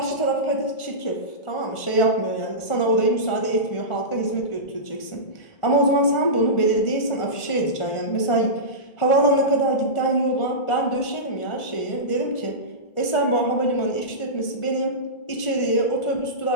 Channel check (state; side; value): late; right; 1.4 ms